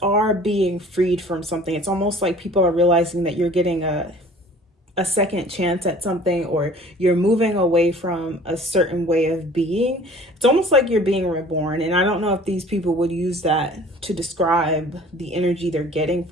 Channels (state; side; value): normal; both; correlation 0.48